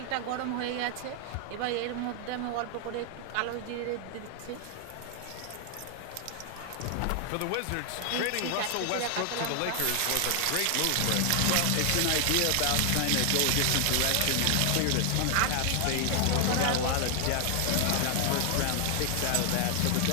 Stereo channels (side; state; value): both; different; correlation 0.00